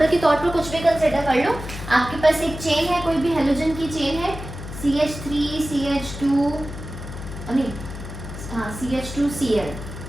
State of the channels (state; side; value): noise; left; hum, 10 dB below the sound